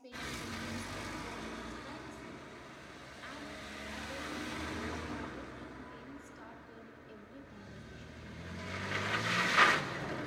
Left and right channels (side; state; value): both; identical; correlation 1.00